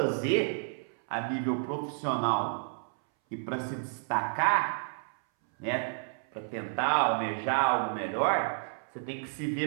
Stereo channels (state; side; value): silent; left; 57 dB below the other